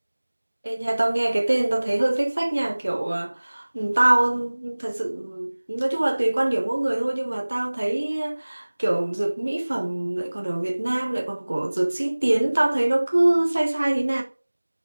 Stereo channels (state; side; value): inverted; both; correlation -1.00